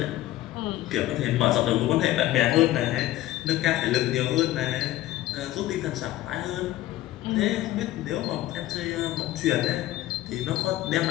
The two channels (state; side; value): quieter; right; 15.0 dB